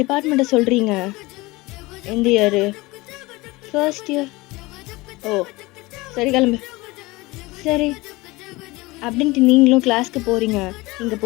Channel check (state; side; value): quieter; right; 21.9 dB